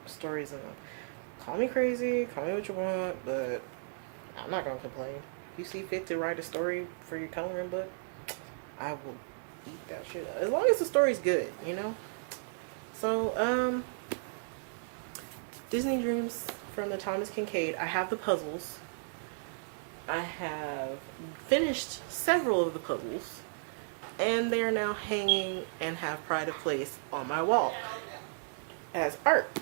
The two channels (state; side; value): silent; left; digital silence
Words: stories in them. Call me crazy, call me what you want, but I'm not gonna complain. If you see fit to write a story for your coloring book, I will eat that shit up. As long as the story's good, you know? So, Disney Dreams from the Thomas Kincaid. I have the puzzles. I have finished several of the puzzles, and they're now hanging and have pride of place on my wall as art,